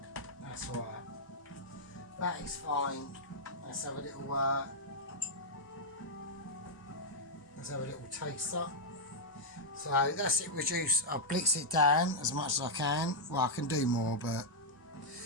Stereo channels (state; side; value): normal; both; correlation -0.05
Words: That's alright. That is fine. Let's have a little taster. So that's it reduced. I'll blitz it down as much as I can. Well, I can do more, but